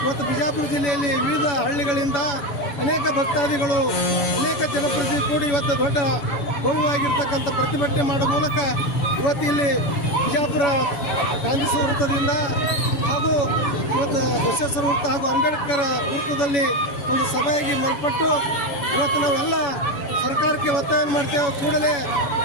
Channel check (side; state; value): right; late; 7.1 ms